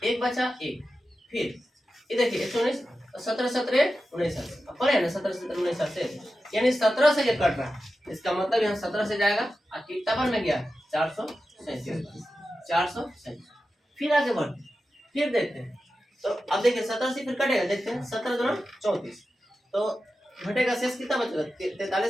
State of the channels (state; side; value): normal; both; correlation 0.92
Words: 1 बचा 1, फिर ये देखिए 119, 17 17 19 पढ़े ना, 17 17 19 से, यानी 17 से ये कट रहा है, इसका मतलब यहाँ 17 से जाएगा और कितना पर में गया 437। फिर आगे बढ़ते, फिर देखते हैं, तो अब देखिए 17 से फिर कटेगा, देखते हैं 17 2 34, तो घटेगा शेष कितना बचेगा,